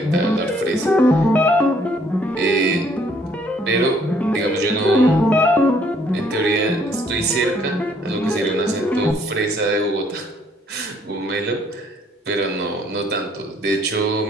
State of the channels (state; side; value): normal; both; correlation 0.65